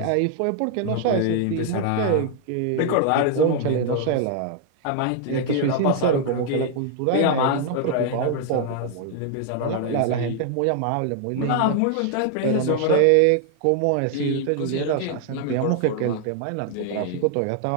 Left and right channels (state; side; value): different; both; correlation 0.00